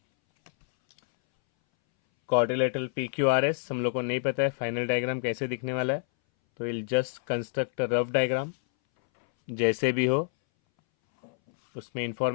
Quadrilateral PQRS हम लोग को नहीं पता है फाइनल डायग्राम कैसे दिखने वाला है, तो will just construct a rough diagram जैसे भी हो, उसमें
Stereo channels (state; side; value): silent; right; 60 dB below the other